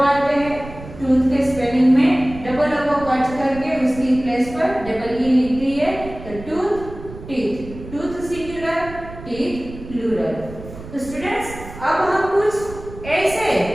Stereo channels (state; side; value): noise; right; rumble, 14 dB below the sound